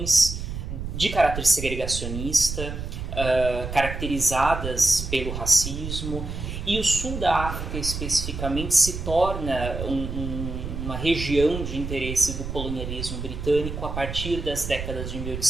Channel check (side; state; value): right; noise; rumble, 6 dB below the sound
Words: de caráter segregacionista, caracterizadas pelo racismo. E o sul da África, especificamente, se torna uma região de interesse do colonialismo britânico a partir das décadas de